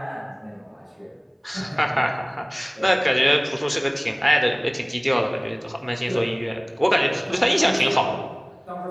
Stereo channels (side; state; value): both; identical; correlation 1.00